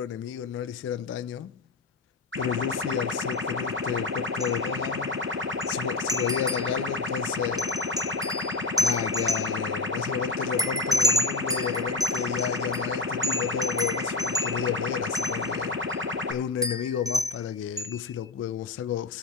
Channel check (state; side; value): quieter; right; 3.5 dB